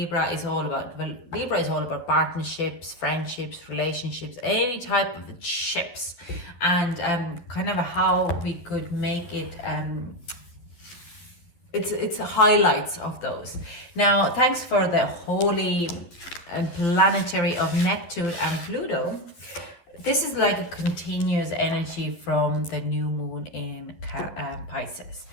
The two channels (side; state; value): right; late; 12 ms